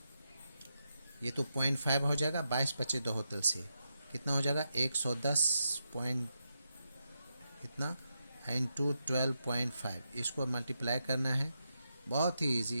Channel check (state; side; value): inverted; both; correlation -0.85